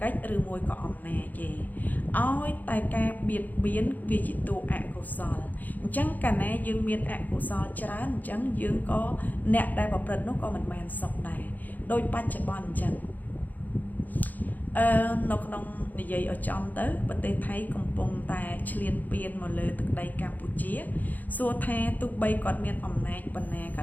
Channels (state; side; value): late; right; 0.083 ms